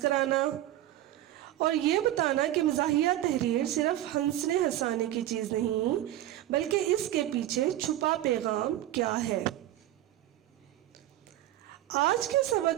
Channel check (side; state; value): left; quieter; 13.8 dB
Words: کرانا، اور یہ بتانا کہ مزاحیہ تحریر صرف ہنسنے ہنسانے کی چیز نہیں بلکہ اس کے پیچھے چھپا پیغام کیا ہے۔ آج کے